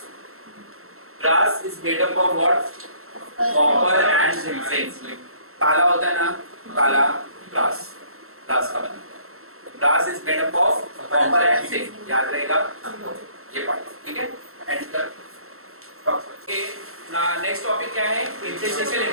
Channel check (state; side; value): late; left; 0.62 ms